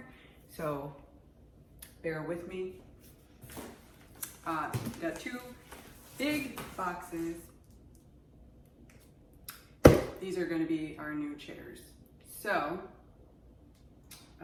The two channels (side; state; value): both; identical; correlation 1.00